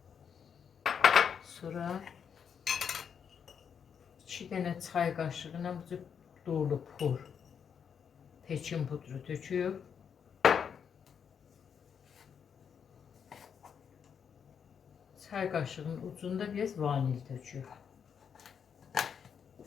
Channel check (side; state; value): right; quieter; 7.3 dB